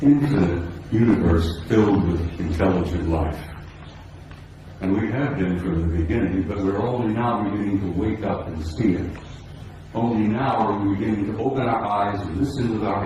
infinite universe filled with intelligent life. And we have been from the beginning, but we're only now beginning to wake up and see it. Only now are we beginning to open our eyes and listen with our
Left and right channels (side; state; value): both; identical; correlation 1.00